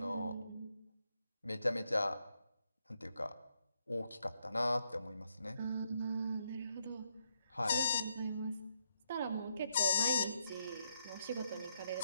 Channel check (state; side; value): inverted; both; correlation -0.77